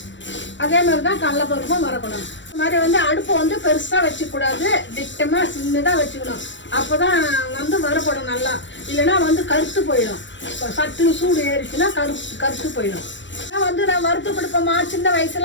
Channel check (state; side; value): late; right; 0.54 ms